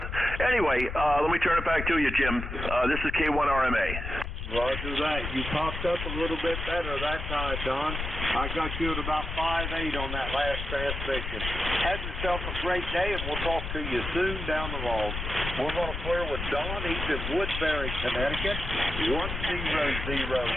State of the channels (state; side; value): noise; left; rumble, 5 dB below the sound